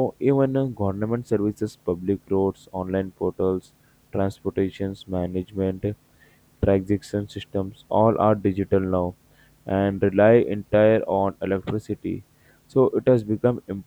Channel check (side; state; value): both; identical; correlation 1.00